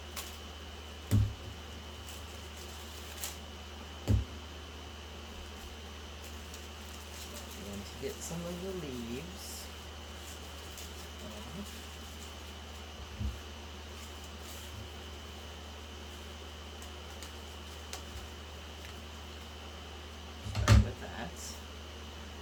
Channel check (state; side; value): identical; both; correlation 1.00